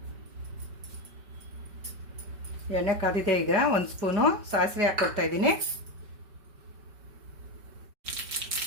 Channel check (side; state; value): left; late; 5.2 ms